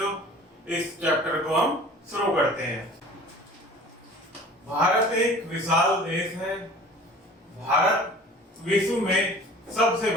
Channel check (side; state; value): both; normal; correlation 0.44